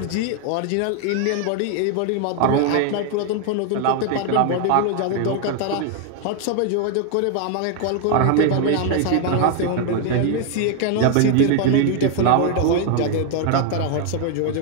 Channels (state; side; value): different; both; correlation 0.00